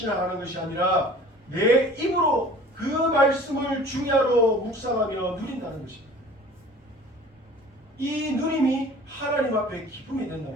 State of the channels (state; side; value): normal; both; correlation 0.46